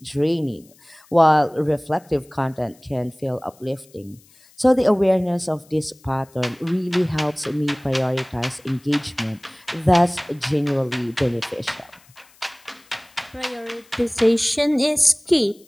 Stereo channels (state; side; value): noise; left; hiss, 28 dB below the sound